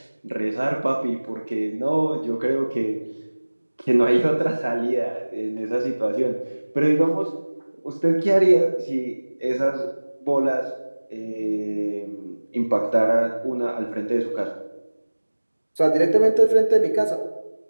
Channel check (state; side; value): inverted; both; correlation -1.00